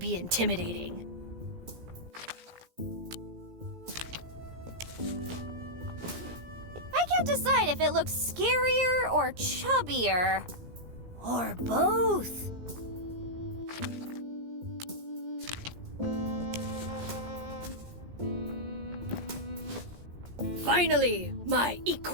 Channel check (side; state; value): left; late; 17 ms